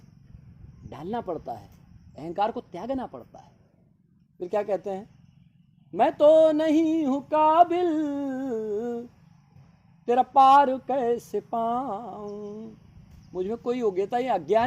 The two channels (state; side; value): identical; both; correlation 1.00